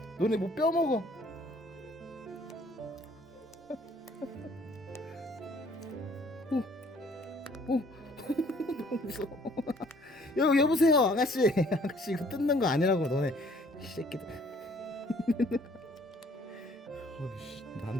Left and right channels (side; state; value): both; normal; correlation 0.59